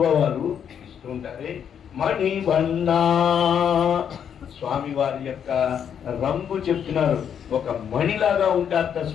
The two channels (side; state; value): right; quieter; 8.3 dB